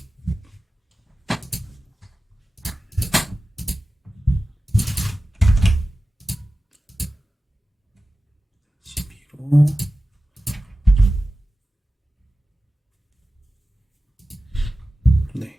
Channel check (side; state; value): both; normal; correlation 0.95